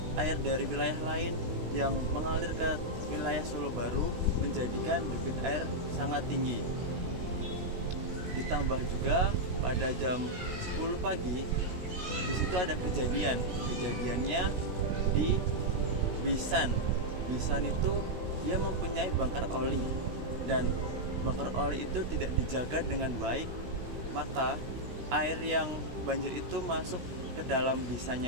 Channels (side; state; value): left; late; 16 ms